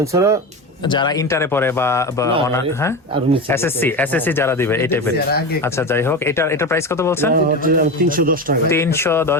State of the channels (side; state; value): both; normal; correlation 0.22